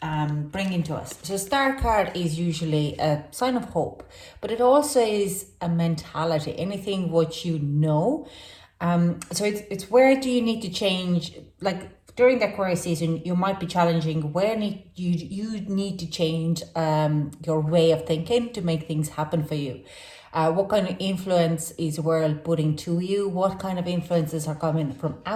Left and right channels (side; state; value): both; identical; correlation 1.00